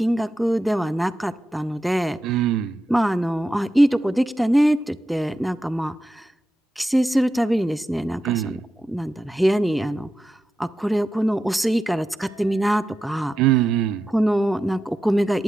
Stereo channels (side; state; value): both; normal; correlation 0.89